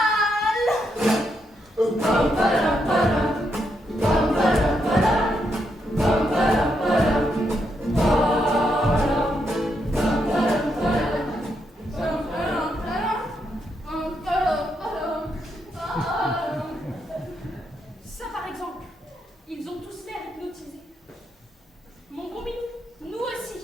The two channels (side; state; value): both; normal; correlation 0.80